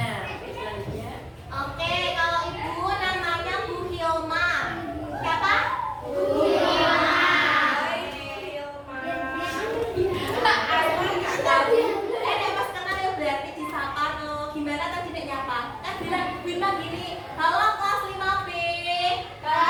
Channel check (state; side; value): identical; both; correlation 1.00